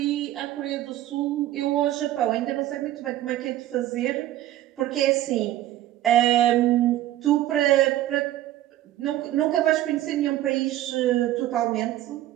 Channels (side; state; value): left; quieter; 13.9 dB